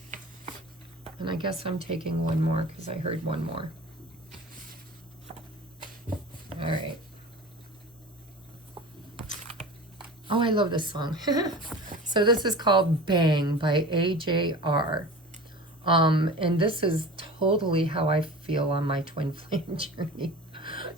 And I guess I'm taking one more because I heard one more. All right. Oh, I love this song. So this is called Bang by AJR. And this is totally how I feel on my twin flame journey.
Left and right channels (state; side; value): normal; both; correlation 0.36